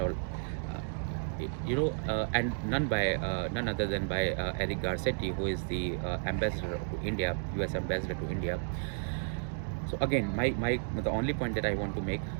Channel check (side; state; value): left; silent; digital silence